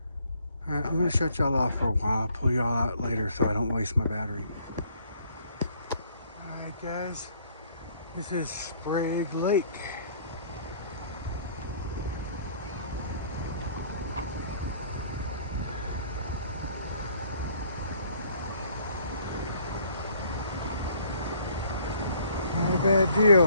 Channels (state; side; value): inverted; both; correlation -0.61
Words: Alright, I'm going to shut y'all off for a while. I'll pull y'all out later so I don't waste my battery. Alright guys, this is Sprague Lake. Not a bad